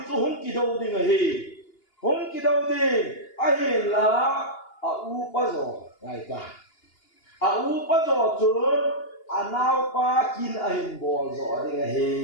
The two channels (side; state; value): right; late; 2.8 ms